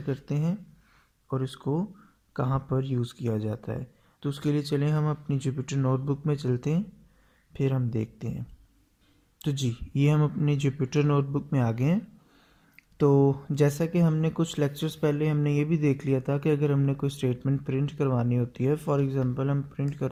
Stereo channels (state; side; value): identical; both; correlation 1.00